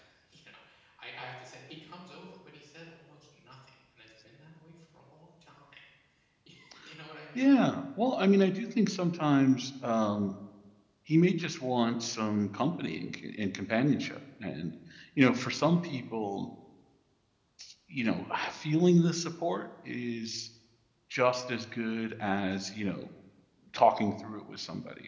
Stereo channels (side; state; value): both; identical; correlation 1.00